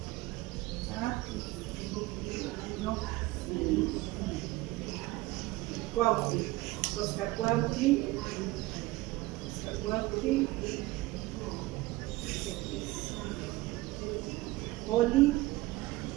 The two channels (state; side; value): quieter; left; 19.6 dB